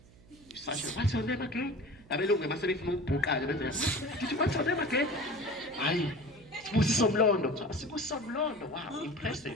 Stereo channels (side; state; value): right; noise; hum, 24 dB below the sound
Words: you're such a what's your name again abelungu mase befuna ukubhuqa benza did you what's your name again hayi Sibusiso Mlondo, wow